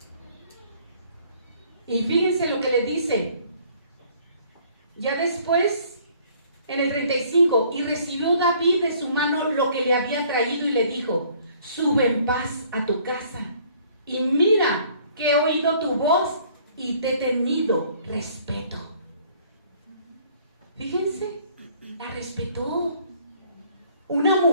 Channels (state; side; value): inverted; both; correlation -0.58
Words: Y fíjense lo que le dice. Ya después, en el 35, y recibió David de su mano lo que le había traído y le dijo: sube en paz a tu casa, y mira que he oído tu voz y te he tenido respeto. Fíjense, la respetó. Una